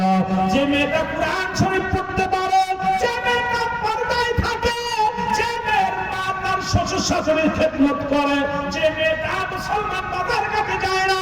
যে মেয়েটা কোরআন শরীফ পড়তে পারে, যে মেয়েটা পর্দায় থাকে, যে মেয়ের মা তার শ্বশুর শাশুড়ির খেদমত করে, যে মেয়েটা মুসলমান বাজার কাছে যায় না,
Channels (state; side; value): identical; both; correlation 1.00